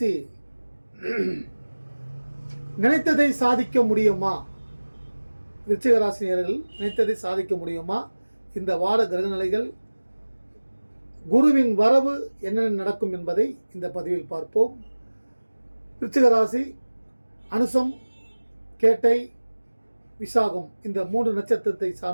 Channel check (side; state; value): both; inverted; correlation -1.00